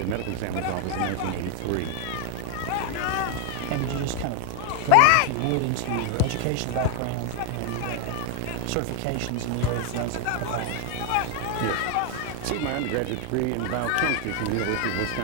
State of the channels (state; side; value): different; both; correlation 0.00